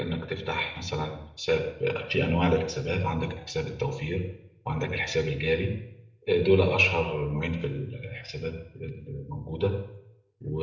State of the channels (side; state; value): both; identical; correlation 1.00